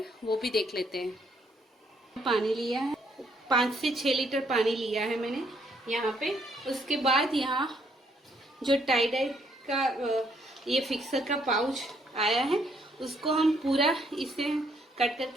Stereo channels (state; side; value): normal; both; correlation 0.70